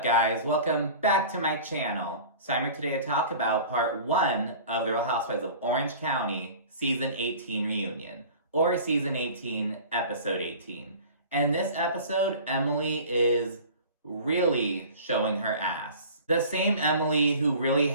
guys? Welcome back to my channel. So I'm here today to talk about part 1 of The Real Housewives of Orange County Season 18 reunion, or Season 18, Episode 18. And in this episode, Emily is really showing her ass. The same Emily who really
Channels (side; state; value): both; inverted; correlation -0.41